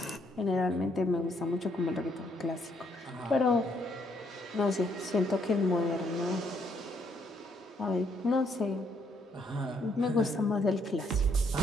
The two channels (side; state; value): both; normal; correlation 0.71